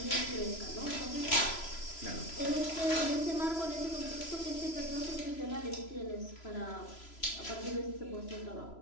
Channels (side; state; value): right; late; 3.0 ms